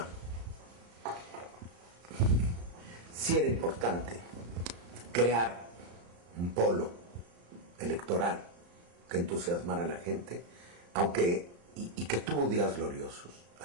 sí era importante crear un polo electoral que entusiasmara a la gente, aunque, y que tuvo días gloriosos,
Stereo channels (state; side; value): late; left; 34 ms